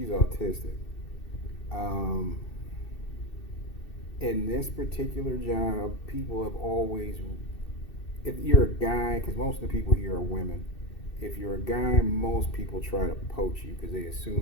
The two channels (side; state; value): right; late; 2.7 ms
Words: autistic. Um, in this particular job, people have always, if you're a guy, because most of the people here are women, if you're a guy, most people try to poach you because they